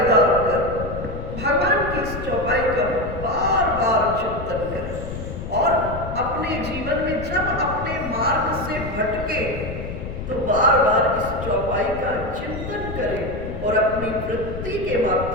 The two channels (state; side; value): noise; left; rumble, 8 dB below the sound